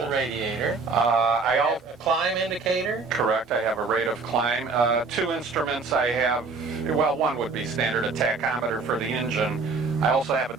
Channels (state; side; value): quieter; left; 4.2 dB